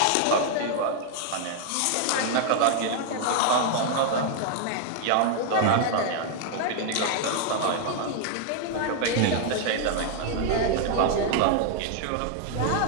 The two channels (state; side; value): different; both; correlation 0.00